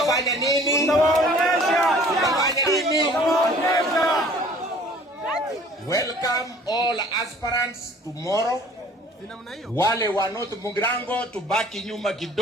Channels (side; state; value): both; normal; correlation 0.51